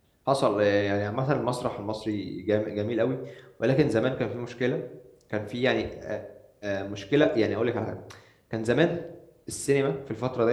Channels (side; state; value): both; identical; correlation 1.00